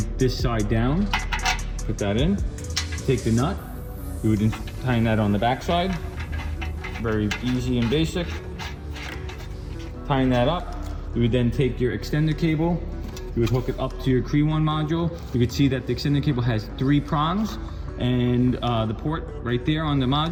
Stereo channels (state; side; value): identical; both; correlation 1.00